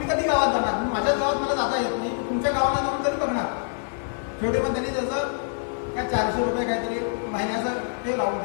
कधी गावात जाणार? माझ्याच गावात मला जाता येत नाही, तुमच्या गावाला जाऊन तरी बघणार. शेवटी मग त्यांनी त्याचं काय 400 रुपये काहीतरी महिन्याचं ते लावून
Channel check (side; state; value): right; silent; digital silence